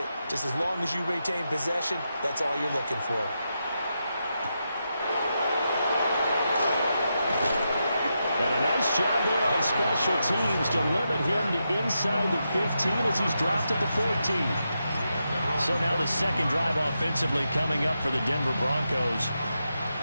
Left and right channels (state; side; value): inverted; both; correlation -0.86